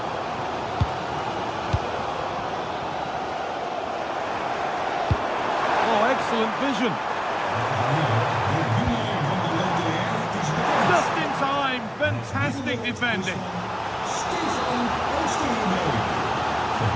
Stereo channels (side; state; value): both; identical; correlation 1.00